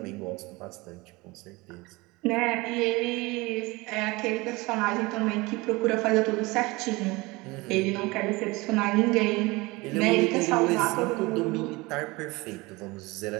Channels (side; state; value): left; quieter; 23.2 dB